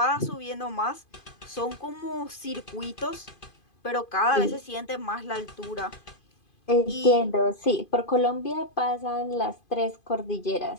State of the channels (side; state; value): right; late; 2.5 ms